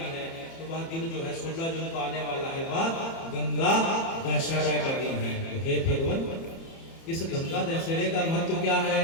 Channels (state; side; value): late; right; 30 ms